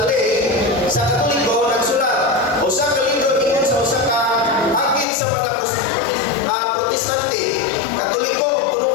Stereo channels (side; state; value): right; drops out; at 5.1 s